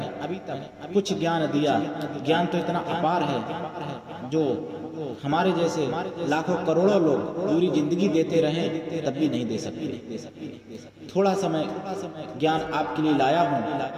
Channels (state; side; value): identical; both; correlation 1.00